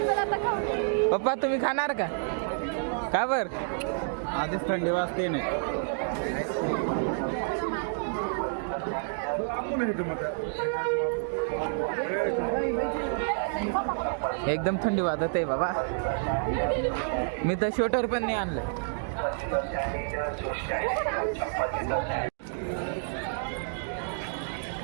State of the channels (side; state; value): left; silent; digital silence